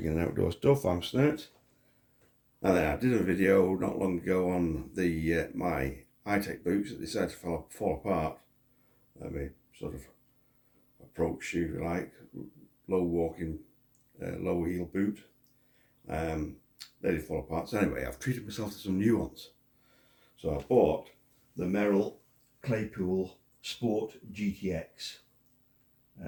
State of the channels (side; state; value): both; identical; correlation 1.00